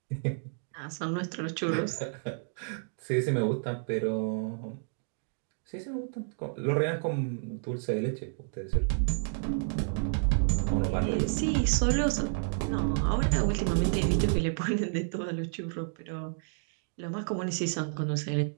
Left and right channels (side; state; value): left; silent; digital silence